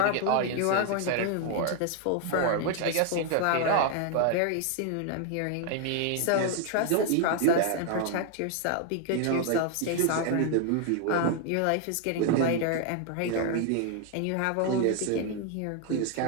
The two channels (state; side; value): different; both; correlation 0.00